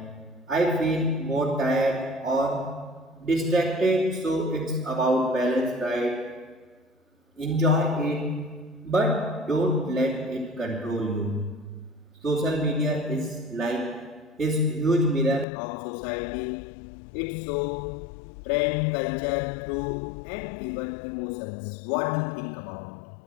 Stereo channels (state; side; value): drops out; right; at 15.5 s